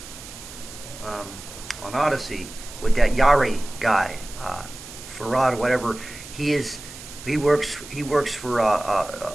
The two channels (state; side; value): noise; right; hiss, 15 dB below the sound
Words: um, on Odyssey with that Yari guy, Farad, whatever. He is. He works for